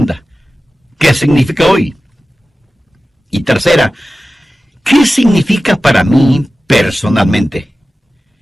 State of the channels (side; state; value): both; normal; correlation 0.95